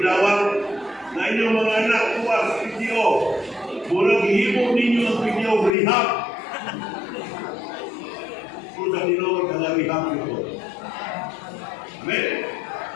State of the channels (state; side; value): drops out; right; at 5.7 s